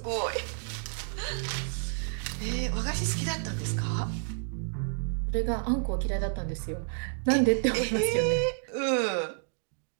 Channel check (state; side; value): silent; left; digital silence